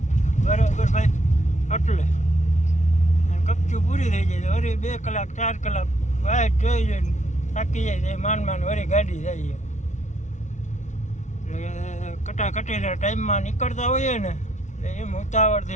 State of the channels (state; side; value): late; right; 0.35 ms